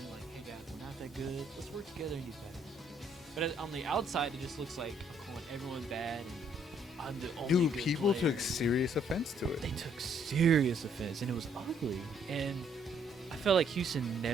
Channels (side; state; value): both; normal; correlation 0.67